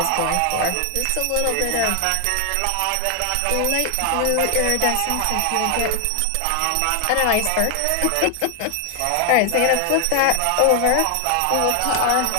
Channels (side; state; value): both; different; correlation 0.00